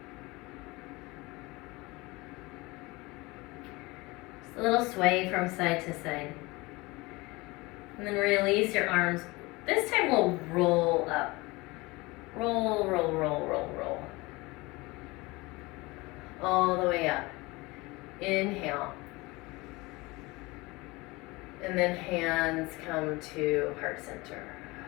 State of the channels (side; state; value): right; quieter; 23.2 dB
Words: Just a little sway from side to side. And then release your arms. This time we'll roll up. Roll, roll, roll, roll, roll. All the way up. Inhale. And then hands come to heart center.